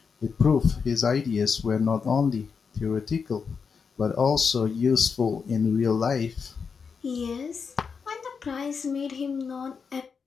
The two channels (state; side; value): quieter; right; 5.7 dB